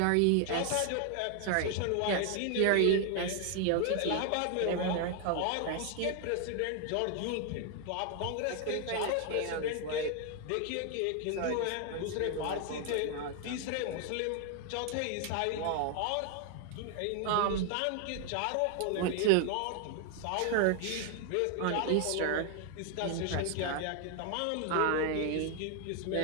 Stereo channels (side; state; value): both; different; correlation 0.00